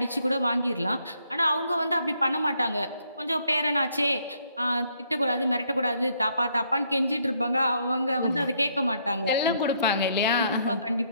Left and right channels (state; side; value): inverted; both; correlation -0.71